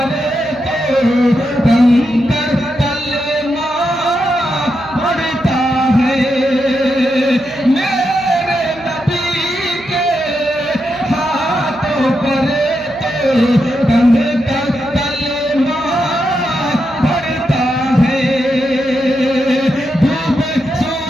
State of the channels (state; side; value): noise; right; hum, 22 dB below the sound